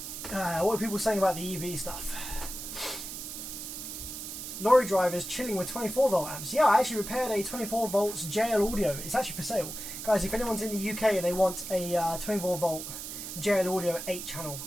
What are people saying about the EV stuff? Lorry drivers chilling with 24 volt amps. Yeah, I actually repaired a 24 volts JL audio. It's actually for sale. Guys, if anyone's in the UK and they want a 24 volt JL audio 8 channel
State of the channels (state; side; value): noise; right; hiss, 8 dB below the sound